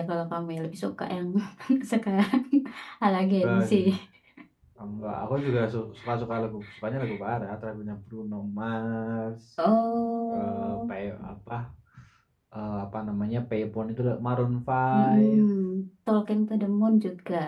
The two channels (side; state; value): both; identical; correlation 1.00